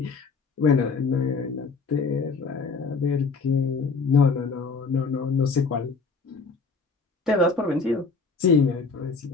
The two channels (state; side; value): quieter; right; 4.6 dB